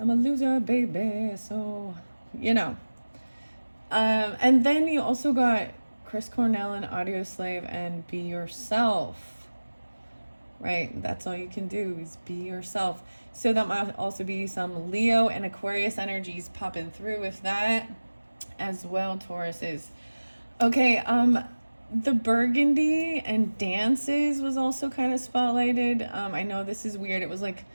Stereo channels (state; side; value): inverted; both; correlation -1.00